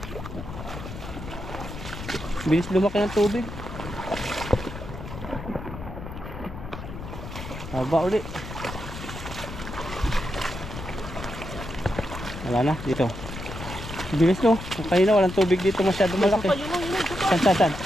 Bilis lumaki ng tubig. Haba uli. Wala na, dito. Bilis no. Kanina walang tubig dito masyado malaki.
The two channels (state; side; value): noise; left; rumble, 10 dB below the sound